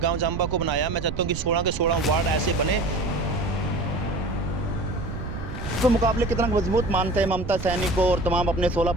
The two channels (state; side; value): noise; right; rumble, 7 dB below the sound